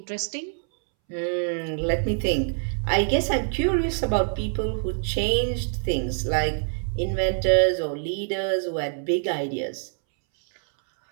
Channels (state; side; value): silent; left; 62 dB below the other